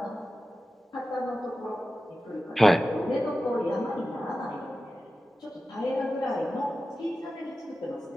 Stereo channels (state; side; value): normal; both; correlation 0.94